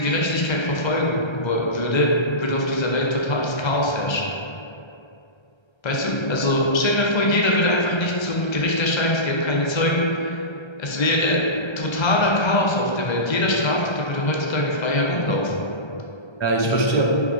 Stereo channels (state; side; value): late; right; 1.3 ms